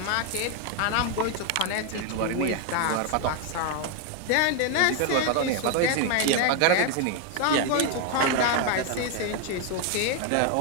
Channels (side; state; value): both; different; correlation 0.01